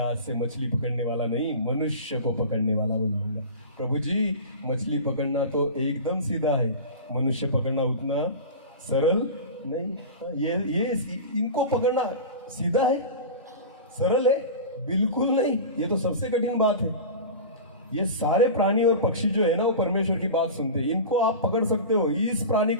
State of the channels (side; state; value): both; inverted; correlation -0.30